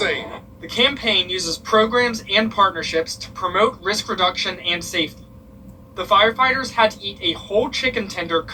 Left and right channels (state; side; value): identical; both; correlation 1.00